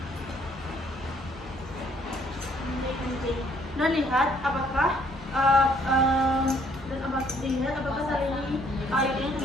lihat apakah lihat apakah tali IUD ini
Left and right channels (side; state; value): both; normal; correlation 0.64